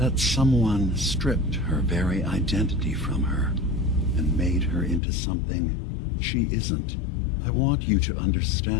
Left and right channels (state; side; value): drops out; right; at 5.0 s